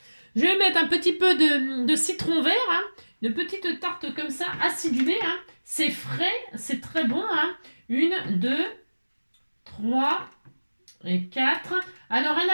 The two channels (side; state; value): both; inverted; correlation -1.00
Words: Je vais mettre un petit peu de citron vert. Hein. Une petite tarte comme ça, acidulée. Hein. C'est frais, c'est très bon. Hein. 1, 2, 3 et 4. Alors, un